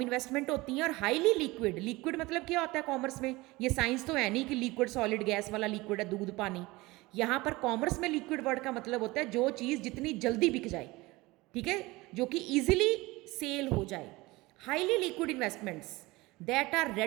इन्वेस्टमेंट होती हैं और हाईली लिक्विड, लिक्विड मतलब क्या होता है कॉमर्स में, ये साइंस तो है नहीं कि लिक्विड सॉलिड गैस वाला लिक्विड है, दूध पानी। यहाँ पर कॉमर्स में लिक्विड वर्ड का मतलब होता है जो चीज़ जितनी जल्दी बिक जाए, ठीक है, जो कि ईजिली सेल हो जाए। Highly liquid investments that are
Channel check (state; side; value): quieter; left; 21.4 dB